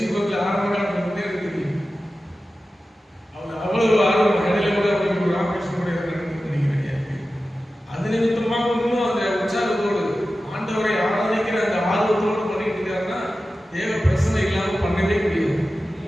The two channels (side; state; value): both; normal; correlation 0.94